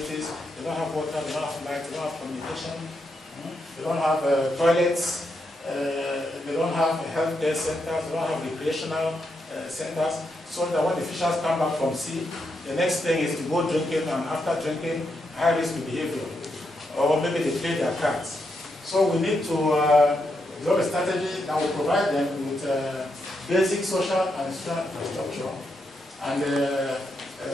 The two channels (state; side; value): normal; both; correlation 0.82